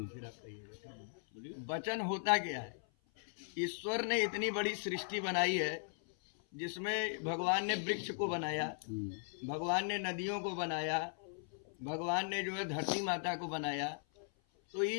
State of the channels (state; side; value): silent; right; 52 dB below the other